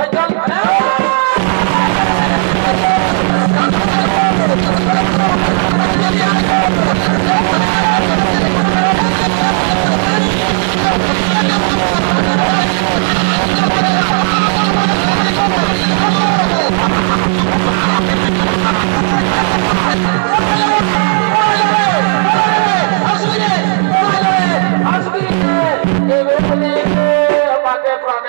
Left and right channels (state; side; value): silent; left; 59 dB below the other